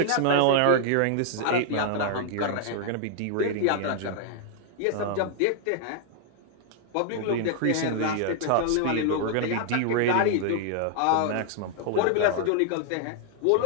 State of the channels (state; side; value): different; both; correlation 0.00